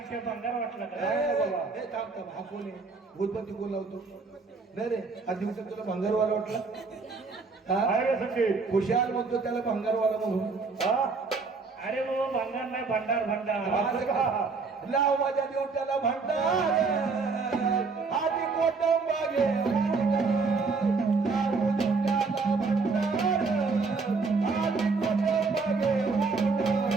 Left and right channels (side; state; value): left; quieter; 4.4 dB